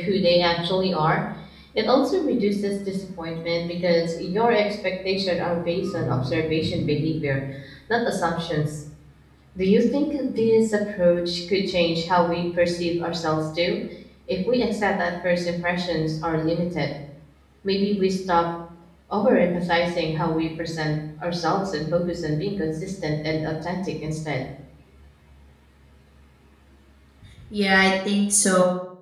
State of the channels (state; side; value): identical; both; correlation 1.00